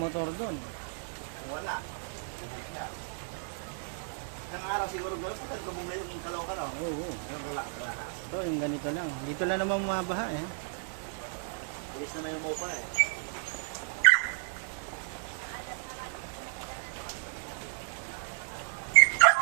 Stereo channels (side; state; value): left; silent; digital silence